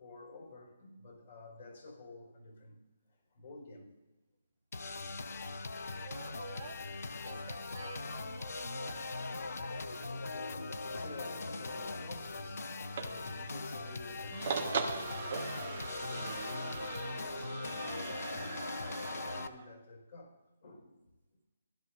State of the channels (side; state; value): both; inverted; correlation -0.74